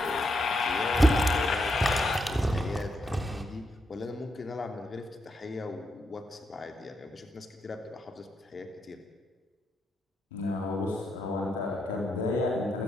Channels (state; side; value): normal; both; correlation 0.81